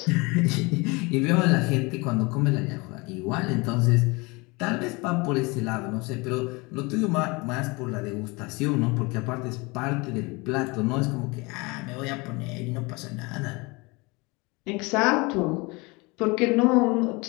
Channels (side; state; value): right; quieter; 26.1 dB